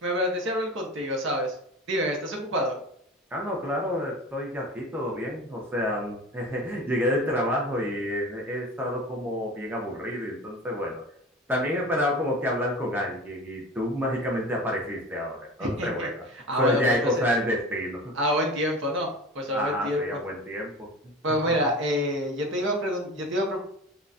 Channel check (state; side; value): normal; both; correlation 0.34